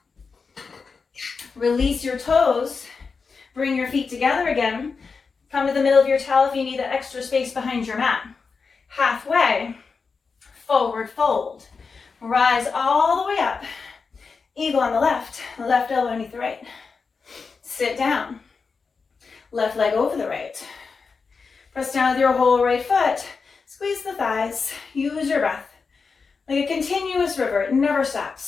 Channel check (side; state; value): right; quieter; 5.0 dB